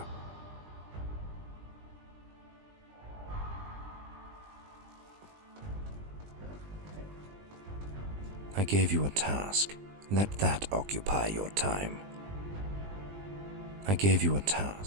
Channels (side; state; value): left; late; 20 ms